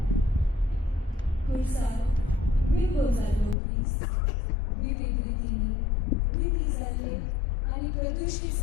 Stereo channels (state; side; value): drops out; right; at 3.6 s